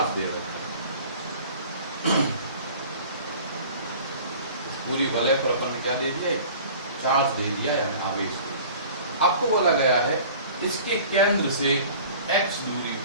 दे रखा है, पूरी वलय पर अपन ने क्या दे दिया, चार्ज दे दिया, यानी आवेश। आपको बोला गया है इसके केंद्र से x दूरी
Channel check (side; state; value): both; inverted; correlation -0.44